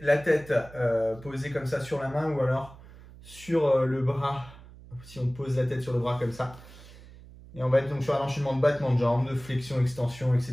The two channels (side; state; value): right; noise; hum, 19 dB below the sound